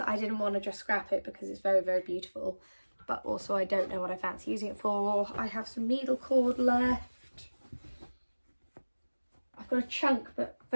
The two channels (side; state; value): both; inverted; correlation -1.00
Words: didn't want to just scrap it because it's very, very beautiful. But also I don't know what I fancy using it for. I have some needle cord left. I've got a chunk but